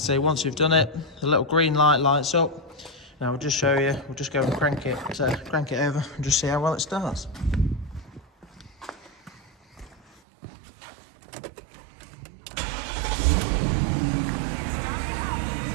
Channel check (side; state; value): left; drops out; at 10.2 s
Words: once you've done it, the little green light lights up. Now we'll just show you, we'll just go and crank it over and just see how well it starts.